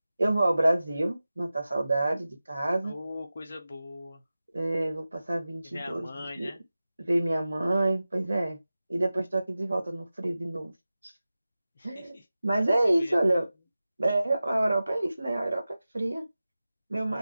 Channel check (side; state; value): both; inverted; correlation -0.95